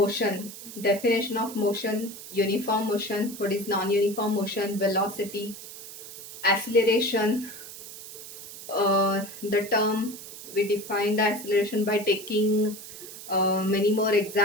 definition of motion, uniform motion, what is non-uniform motion, velocity, acceleration. The term, we define the acceleration by taking many more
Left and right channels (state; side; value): noise; right; hiss, 13 dB below the sound